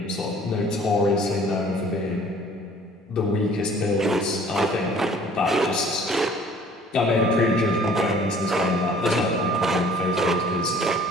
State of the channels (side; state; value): both; normal; correlation 0.53